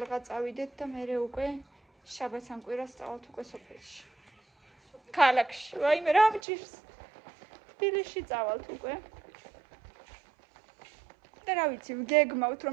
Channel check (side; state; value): left; drops out; at 6.4 s